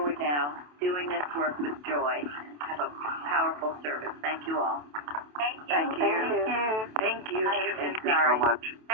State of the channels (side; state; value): left; late; 28 ms